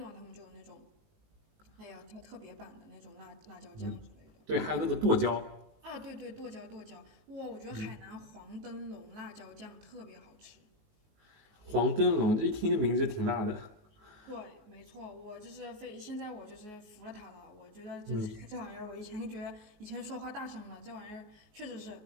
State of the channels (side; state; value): left; late; 19 ms